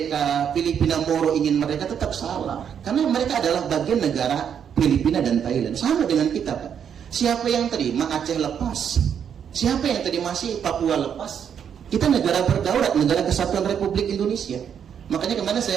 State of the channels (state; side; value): quieter; left; 8.1 dB